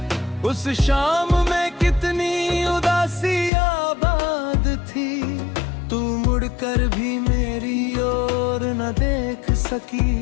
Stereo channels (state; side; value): drops out; right; at 3.5 s